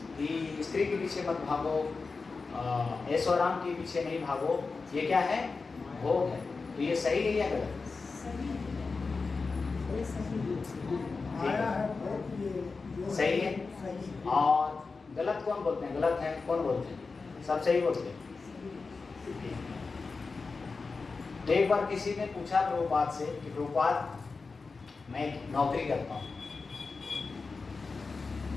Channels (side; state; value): right; quieter; 4.3 dB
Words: कि स्त्री के पीछे मत भागो, ऐशो आराम के पीछे नहीं भागो, ये क्या है? भोग है। तो ये सही है या गलत? आया है बहुत, ये सही है। सही। और गलत कौन बोलते हैं? गलत है कौन बोलते हैं? सब सही बोलते हैं। तो एक बार किसी ने पूछा प्रभुपाद से कि प्रभुपाद, मैं नौकरी करता हूँ,